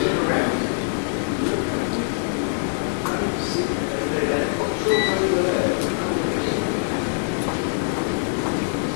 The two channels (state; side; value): silent; right; digital silence